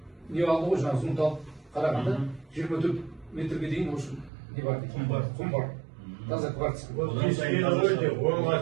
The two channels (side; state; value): left; drops out; at 4.3 s